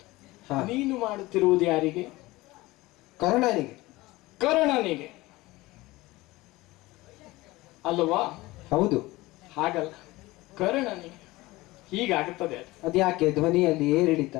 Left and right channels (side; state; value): right; quieter; 19.9 dB